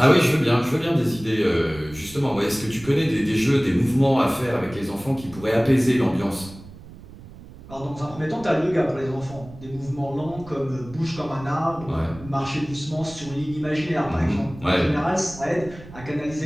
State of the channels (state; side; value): noise; right; rumble, 18 dB below the sound